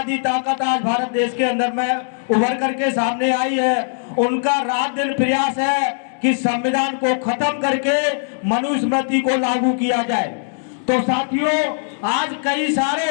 ताकत आज भारत देश के अंदर में उभर करके सामने आई है, उनका रात दिन प्रयास है कि संविधान को खत्म करके मनुस्मृति को लागू किया जाए। तो साथियों, आज कई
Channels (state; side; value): silent; right; digital silence